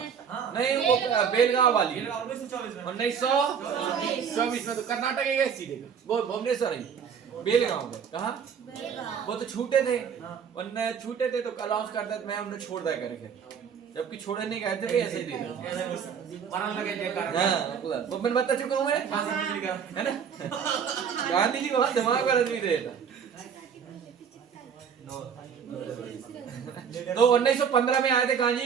नहीं, वो बेलगांव वाली 1924 में। 1924 में। तो कर्नाटक है सीधे, वो भुवनेश्वर है, बेलगांव में। कहाँ? वो तो छूटे थे, उनने छूटे थे तो अनाउंस करता मैं उन्हें छोड़ दिया करके, जबकि छोड़े नहीं गए थे, ऐसे ही दे दिया। मरण लगे जयकार। हाँ वो मैं बता चुका हूँ मैं, है ना। गांधी जी को बहुत दिमाग पर आदमी देता। तो 1915 में आए थे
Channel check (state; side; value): quieter; left; 7.2 dB